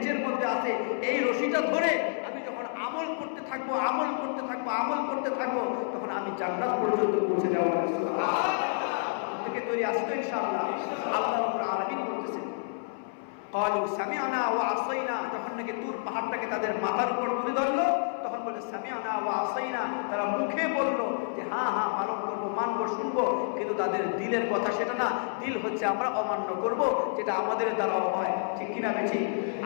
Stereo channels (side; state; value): right; silent; 58 dB below the other